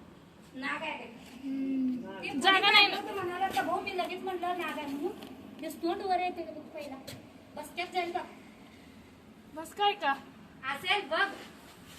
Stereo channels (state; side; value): identical; both; correlation 1.00